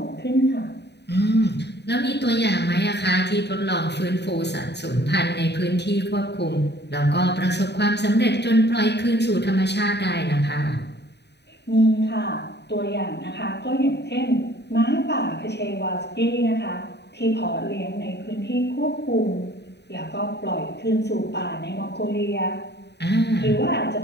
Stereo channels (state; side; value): late; right; 0.49 ms